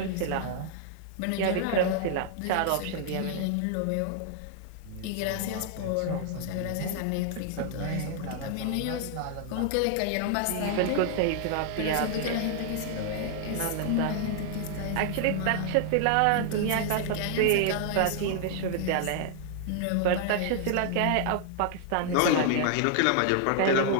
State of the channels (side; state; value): both; different; correlation 0.00